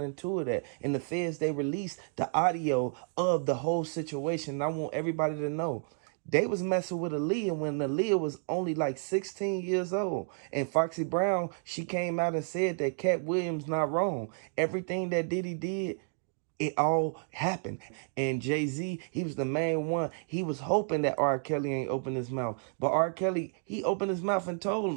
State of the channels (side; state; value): left; silent; 55 dB below the other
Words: into it at. And the feds, they released the audio of the whole situation. And I want everybody to know, they was messing with Aaliyah when Aaliyah was only like 16 years old. And Foxy Brown, she came out and said that Cat Williams not wrong. Everything that Diddy did, it all happened. And Jay-Z, he was the main one. He was hoping that R. Kelly ain't opened his mouth. But R. Kelly, he opened his mouth and told